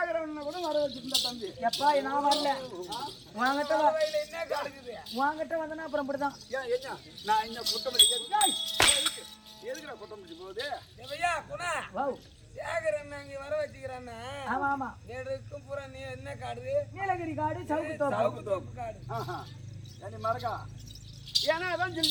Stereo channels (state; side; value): identical; both; correlation 1.00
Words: கூட வர வச்சிருந்த தம்பி எப்பா நான் வரல வாங்கிட்ட வந்தனா அப்புறம் இப்படிதான் நான் இன்னும் குட்டமல்லி எதுக்குடா குட்டமல்லி போகுது சேகரன் அங்க வர வச்சுக்கிறான்னா ஆமா ஆமா நெடுக்கும் பூரா நீ என்ன காடு நீலகிரி காடு சவுக்கு தோப்பு காடு மறக்கா ஏன்னா அதான்